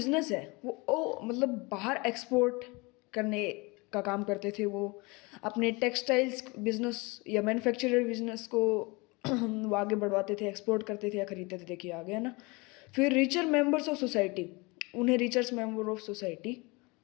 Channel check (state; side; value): quieter; right; 26.3 dB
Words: है वो मतलब बाहर एक्सपोर्ट करने का काम करते थे। वो अपने टेक्सटाइल्स बिजनेस या मैन्युफैक्चरर बिजनेस को वो आगे बढ़वाते थे, एक्सपोर्ट करते थे या खरीदते थे। देखिए आ गया ना। फिर रिचर मेंबर्स ऑफ सोसाइटी, उन्हें रिचर्स मेंबर ऑफ सोसाइटी